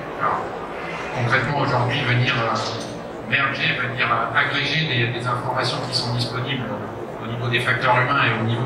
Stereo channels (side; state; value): both; identical; correlation 1.00